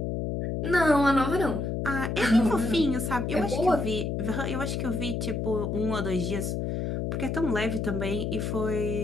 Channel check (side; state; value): left; noise; hum, 1 dB below the sound